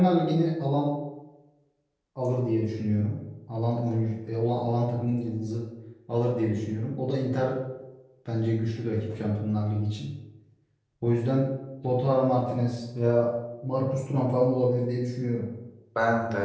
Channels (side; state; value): both; identical; correlation 1.00